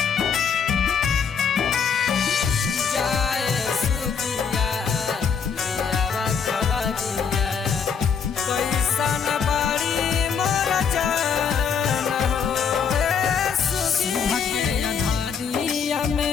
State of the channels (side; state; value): right; quieter; 6.6 dB